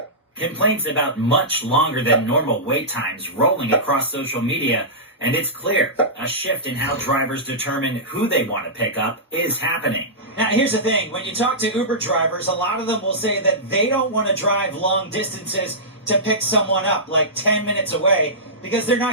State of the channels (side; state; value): both; normal; correlation -0.17